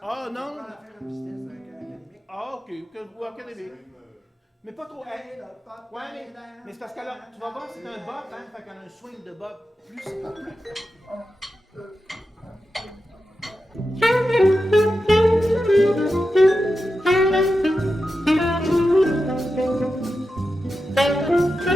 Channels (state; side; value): normal; both; correlation 0.90